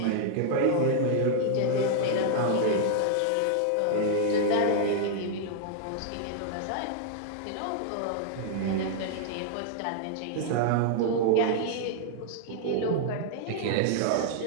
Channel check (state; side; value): different; both; correlation -0.01